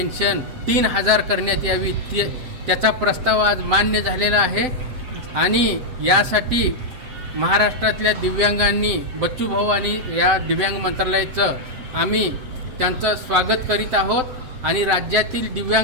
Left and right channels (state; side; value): late; left; 7.8 ms